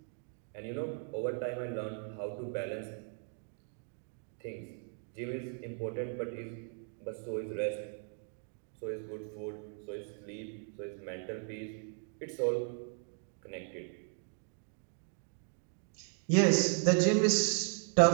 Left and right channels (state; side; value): silent; left; 53 dB below the other